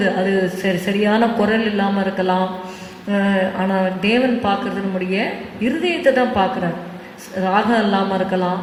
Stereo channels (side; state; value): both; identical; correlation 1.00